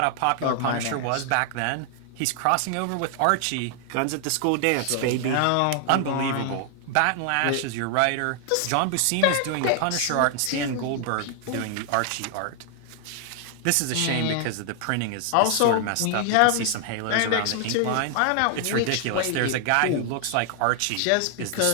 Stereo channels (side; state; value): both; different; correlation 0.00